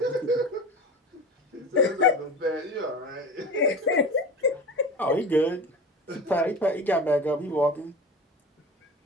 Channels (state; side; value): normal; both; correlation 0.32